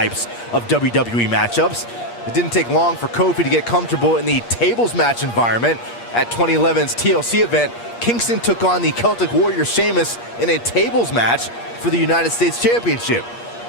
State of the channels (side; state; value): right; late; 8.5 ms